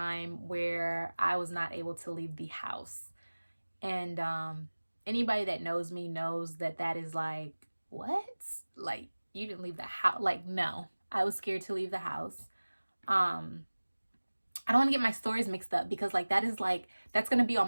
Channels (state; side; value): inverted; both; correlation -1.00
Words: where I was not able to leave the house. And anybody that knows me knows that that is like, what? Like, you didn't leave the house? Like, no, I was scared to leave the house. I don't want to get my stories mixed up because like that's going to be